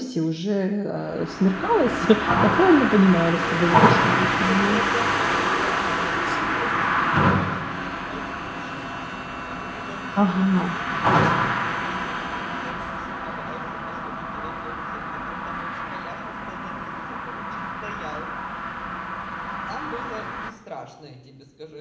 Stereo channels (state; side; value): identical; both; correlation 1.00